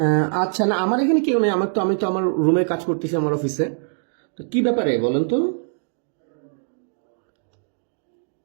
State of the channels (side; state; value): left; silent; digital silence